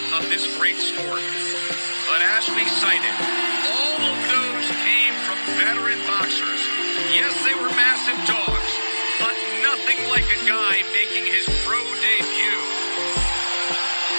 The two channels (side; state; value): both; inverted; correlation -1.00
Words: of this great sport. But as we cited, all of those came from veteran boxers. Yes, they were massive dogs, but nothing like a guy making his pro debut,